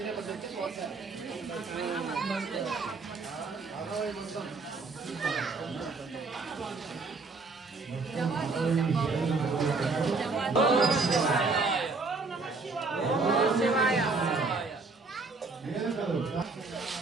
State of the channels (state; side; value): quieter; left; 4.0 dB